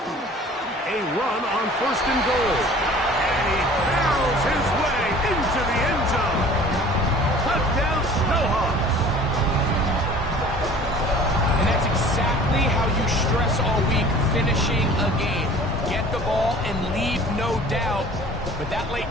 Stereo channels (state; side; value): normal; both; correlation 0.47